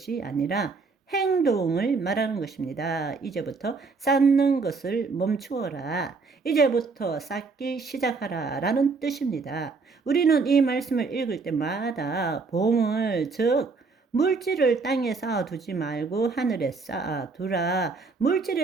아니라 행동을 말하는 것입니다. 이제부터 쌓는 것을 멈추어라. 이제부터 쌓기 시작하라 라는 뜻입니다. 우리는 이 말씀을 읽을 때마다 보물, 즉 물질을 땅에 쌓아두지 말고 하늘에 쌓아두라.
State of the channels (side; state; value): left; quieter; 4.4 dB